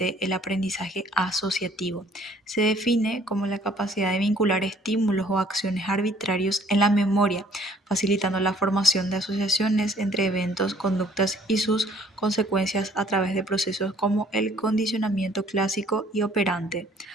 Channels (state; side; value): normal; both; correlation 0.59